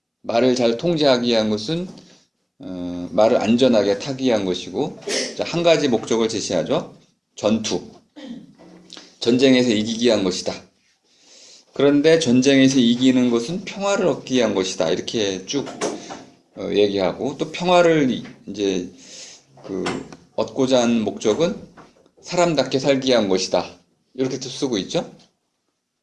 말을 잘 통제하기 위한 것은 말을 안전하게 타기 위한 것이고, 한 가지 목적을 제시하죠. 전투. 전쟁에서 이기기 위한 것이다. 그런데 전쟁에서 이기는 것은 평화를 얻기 위한 것이다. 이렇게 쭉 얘기하고, 또 평화를 이제 얻고자 하는 목적은 사람답게 살기 위한 것이다. 이렇게 또 쓰고 있죠.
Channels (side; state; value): both; identical; correlation 1.00